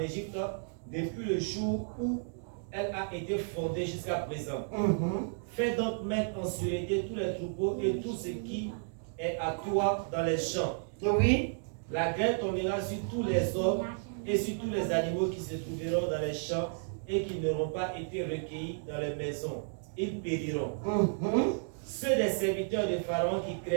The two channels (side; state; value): left; silent; digital silence